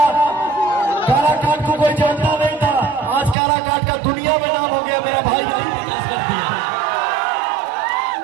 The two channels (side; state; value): left; drops out; at 3.4 s